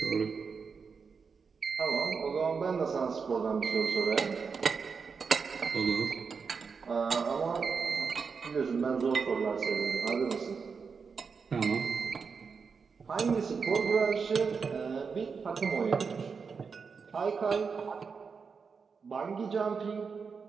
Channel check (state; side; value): quieter; left; 5.5 dB